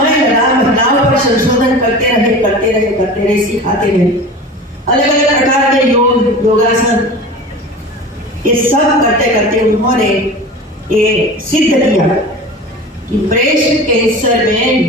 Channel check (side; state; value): both; normal; correlation 0.35